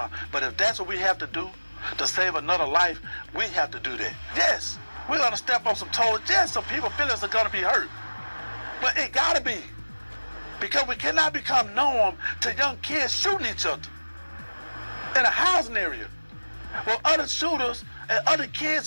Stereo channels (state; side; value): inverted; both; correlation -1.00